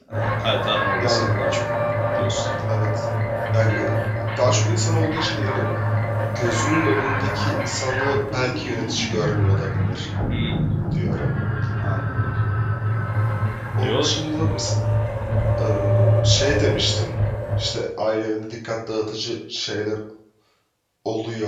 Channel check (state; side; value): identical; both; correlation 1.00